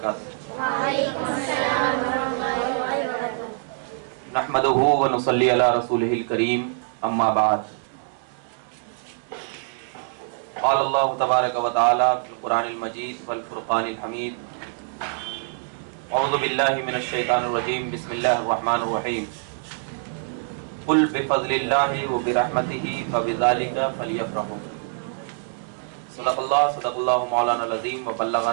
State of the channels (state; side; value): silent; left; digital silence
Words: وعلیکم السلام ورحمۃ اللہ وبرکاتہ۔ نحمدہ ونصلی علی رسولہ الکریم، اما بعد۔ قال اللہ تبارک و تعالی فی القرآن المجید والفرقان الحمید، اعوذ باللہ من الشیطان الرجیم، بسم اللہ الرحمن الرحیم۔ قل بفضل اللہ وبرحمتہ فبذلک فلیفرحوا۔ صدق اللہ مولانا العظیم